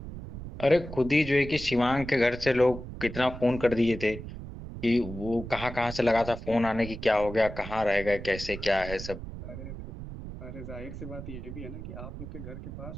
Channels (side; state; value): right; noise; rumble, 10 dB below the sound